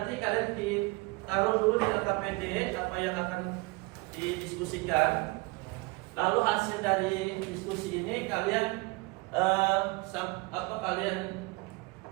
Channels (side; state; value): left; quieter; 25.0 dB